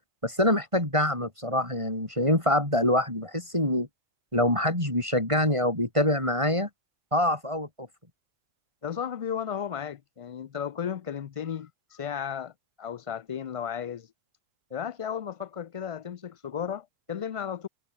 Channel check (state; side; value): late; left; 1.5 ms